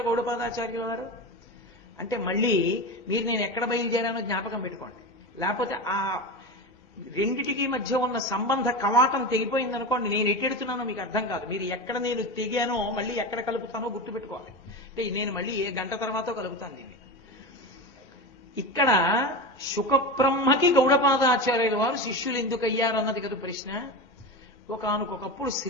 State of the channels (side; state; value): both; normal; correlation 0.23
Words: గౌడపాదాచార్యుల వారు? అంటే మళ్ళీ మీరు నేను ఎక్కడ బయలుదేరానో జ్ఞాపకం పెట్టుకోండి. లేకపోతే ఆ రెండిటికి మధ్య ఉన్న సంబంధ కవాటం తెగిపోయిందనుకోండి, నేను ఎట్టెడుతున్నానో మీకు అర్థం కాదు. మీరు ఎక్కడ నేను తెగానో మళ్ళీ ఎక్కడ కలుపుతానో గుర్తుపెట్టుకోవాలి. అంటే నేను మళ్ళీ ఏ గంట తర్వాతో కలుపుతాను దీన్ని. ఇక్కడ శుకబ్రహ్మకి గౌడపాదాచార్యుల వారు శిష్యులు ఎందుకు అయ్యారు అన్నది కదా ప్రశ్న. ఒకానొకప్పుడు